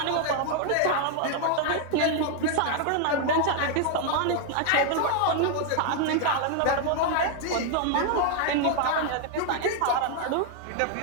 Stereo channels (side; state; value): both; different; correlation 0.00